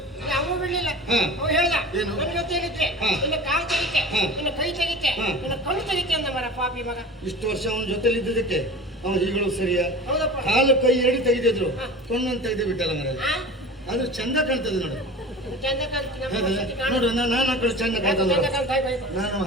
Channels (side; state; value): both; normal; correlation 0.35